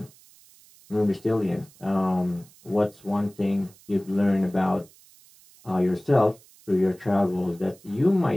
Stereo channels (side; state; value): right; noise; hiss, 26 dB below the sound